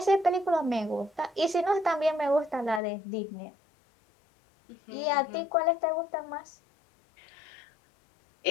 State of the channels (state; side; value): drops out; right; at 2.8 s